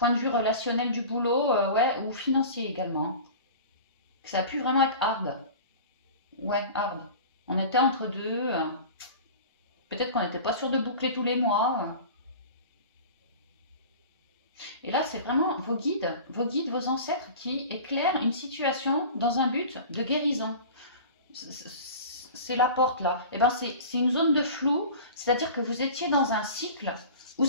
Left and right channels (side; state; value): both; inverted; correlation -0.37